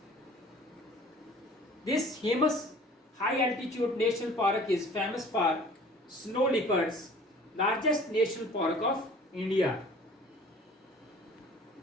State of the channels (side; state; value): both; normal; correlation 0.48